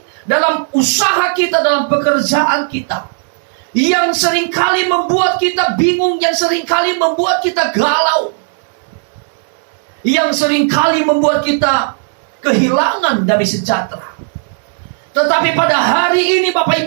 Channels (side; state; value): left; silent; digital silence